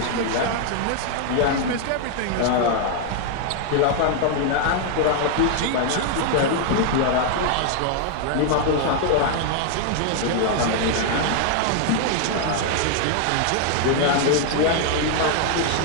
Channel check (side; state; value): both; different; correlation 0.00